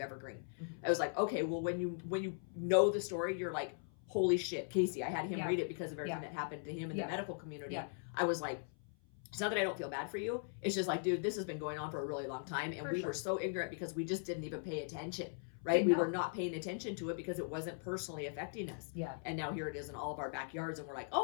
Evergreen? I was like, okay, well, when you know the story, you're like, holy shit, Casey. I had him read it because of everything that happened to him in the medical community. Yeah. I was like, it's not that I don't feel bad for you. It's just like, dude, this has been going on for a really long time, and we were so ignorant because we just didn't even pay attention. Right? We were not paying attention to it because it wasn't personally affecting us. Yeah. And now here it is in all of our backyards, and we're like,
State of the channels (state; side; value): silent; right; 52 dB below the other